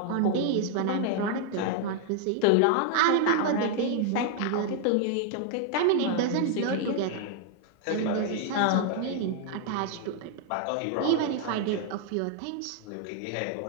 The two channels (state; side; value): different; both; correlation 0.00